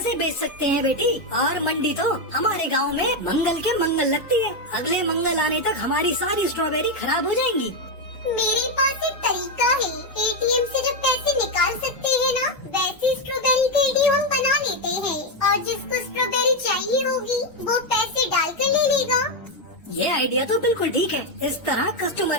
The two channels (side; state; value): right; late; 1.3 ms